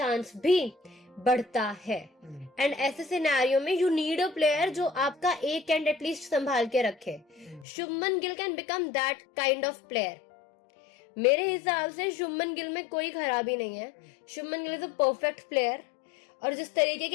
भी बढ़ता है। एंड ऐसे सिनेरियो में यू नीड अ प्लेयर जो आपका एक एंड एटलीस्ट संभाल के रखे। Shubman Gill can become that kind of player. मेरे हिसाब से शुभमन गिल में कोई खराबी नहीं है। Shubman Gill is a perfect player. और जिस तरीके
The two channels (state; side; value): drops out; right; at 7.7 s